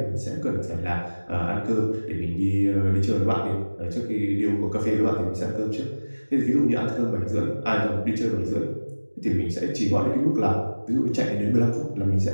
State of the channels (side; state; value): both; inverted; correlation -1.00